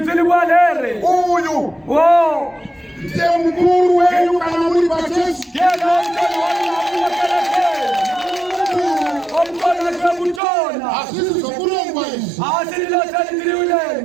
uyu ndiye mukuru wenyu kana muri pachechi omkona kutona asisi sokulongwa izi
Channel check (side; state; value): left; drops out; at 10.4 s